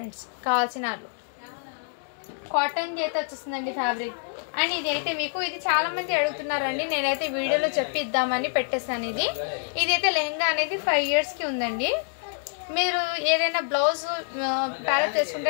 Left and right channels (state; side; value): silent; right; 61 dB below the other